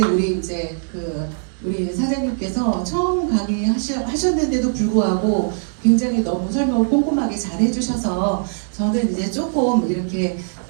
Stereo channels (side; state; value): left; silent; digital silence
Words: 우리 우리 사장님께서 처음 강의하셨는데도 불구하고 굉장히 너무 설명을 꼼꼼하게 잘 해주셔서 저는 이제 조금 이렇게